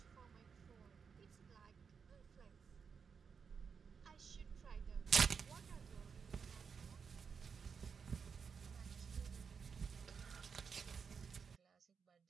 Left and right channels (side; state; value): left; quieter; 6.1 dB